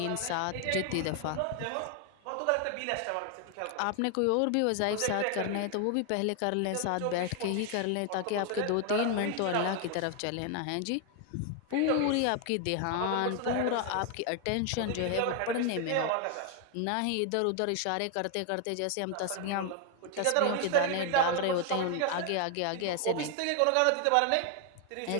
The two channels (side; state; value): both; different; correlation 0.00